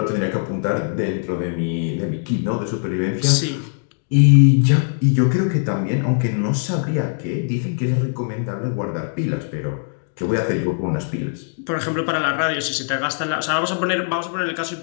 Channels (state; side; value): silent; right; digital silence